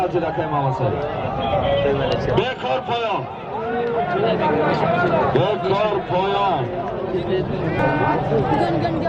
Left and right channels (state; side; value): identical; both; correlation 1.00